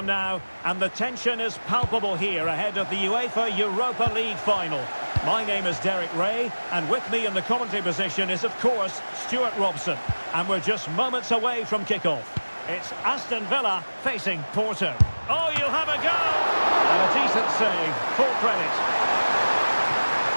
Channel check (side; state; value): both; inverted; correlation -1.00